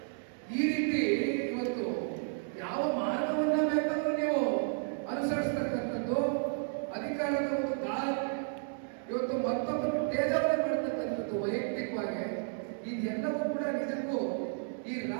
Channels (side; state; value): left; silent; digital silence